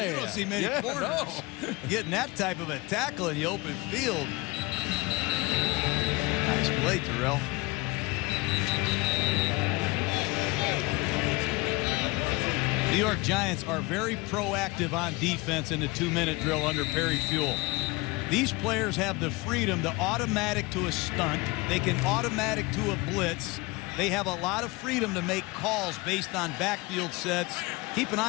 You don't see many corners getting that type of a tackle in the open field. Nice play, Terrell. New York Giants are very proactive on defense in the 2-minute drill under Perry Fuel. These players have the freedom to automatic to a stunt. They can automatic to a blitz. They have a lot of freedom to make calls based on backfield sets. Keep an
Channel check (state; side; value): quieter; right; 23.5 dB